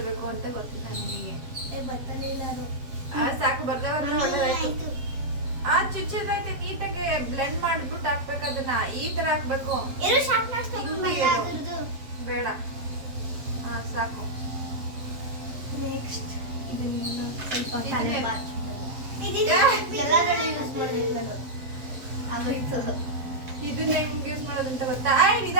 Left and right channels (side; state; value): left; late; 7.6 ms